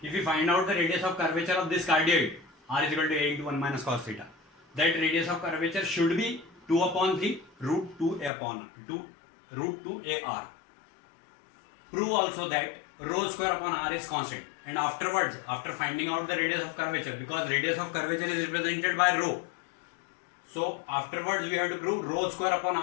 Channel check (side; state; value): right; drops out; at 8.3 s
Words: if we find out the radius of curvature of this cardioid, r is equal to a into 1 minus cos theta. That radius of curvature should be 2 upon 3 root 2 upon 2 root 2 ar. Prove also that rho square upon r is constant. And afterwards, after finding out the radius of curvature, because radius of curvature is represented by rho, so afterwards we have to prove rho square upon